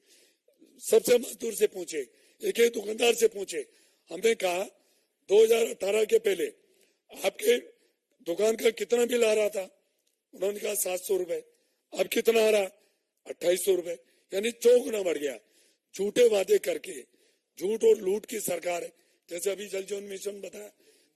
सबसे मजदूर से पूछे, एक एक दुकानदार से पूछे। हमने कहा 2018 के पहले आपके दुकान का कितना बिल आ रहा था? उन्होंने कहा 700 रुपए। अब कितना आ रहा? 2800 रुपए, यानी 4 गुना बढ़ गया। झूठे वादे करके, झूठ और लूट की सरकार है। जैसे अभी जल जीवन मिशन बताया,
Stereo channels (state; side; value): identical; both; correlation 1.00